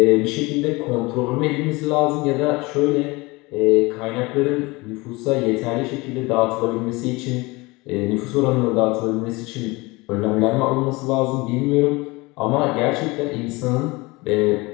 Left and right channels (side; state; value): right; quieter; 23.6 dB